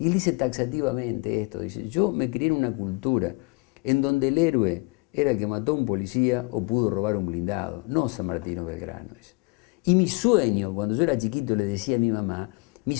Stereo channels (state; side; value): quieter; right; 27.9 dB